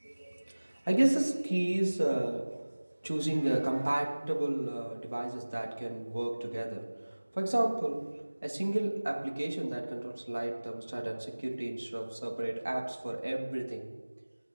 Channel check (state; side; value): inverted; both; correlation -1.00